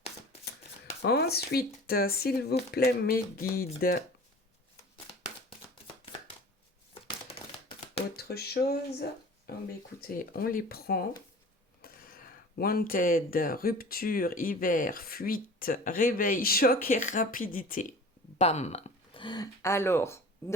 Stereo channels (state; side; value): normal; both; correlation 0.41